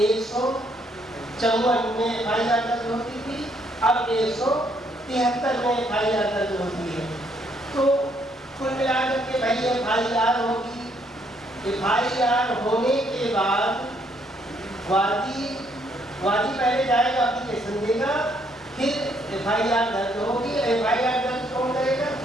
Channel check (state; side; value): normal; both; correlation 0.70